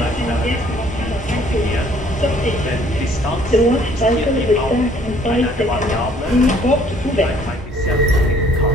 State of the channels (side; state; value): both; normal; correlation 0.59